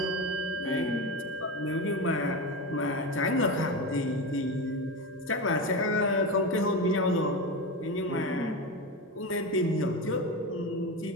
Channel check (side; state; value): both; normal; correlation 0.20